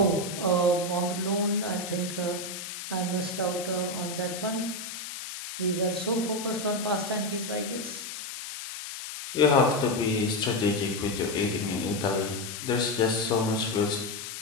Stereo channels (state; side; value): noise; left; hiss, 8 dB below the sound